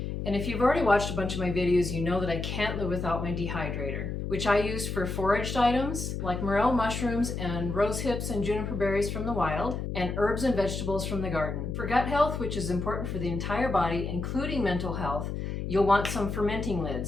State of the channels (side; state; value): left; noise; hum, 4 dB below the sound